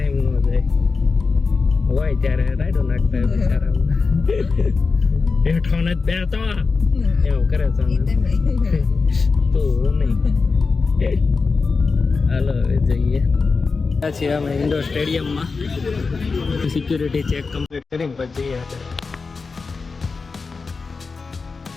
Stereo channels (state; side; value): quieter; right; 4.5 dB